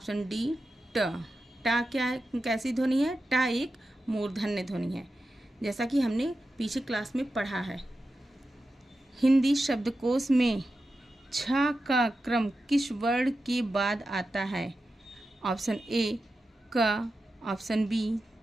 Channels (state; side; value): normal; both; correlation 0.91